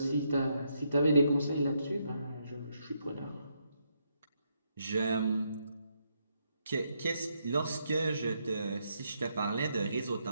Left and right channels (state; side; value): inverted; both; correlation -0.78